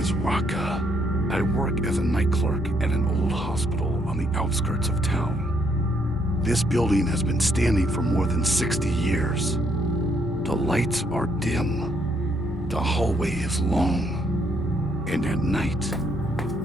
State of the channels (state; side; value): normal; both; correlation 0.72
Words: Raka. I work as a night clerk at an old hospital on the outskirts of town. This building has been standing for more than 60 years. The lights are dim. The hallway is long. And at night,